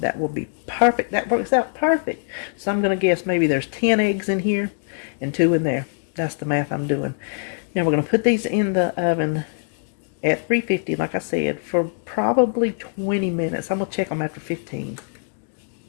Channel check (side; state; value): right; silent; digital silence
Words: will be perfect. That works out perfect. So I'm going to guess maybe there's 10 eggs in here and 2 in there. That's the math I'm doing. Now we're going to put these in the oven at 350, like I said, for probably 20 minutes. I'm going to check them after 15.